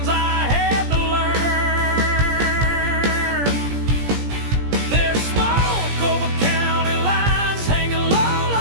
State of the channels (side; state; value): left; late; 17 ms